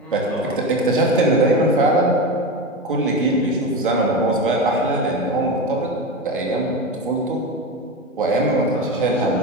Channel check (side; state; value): both; normal; correlation 0.22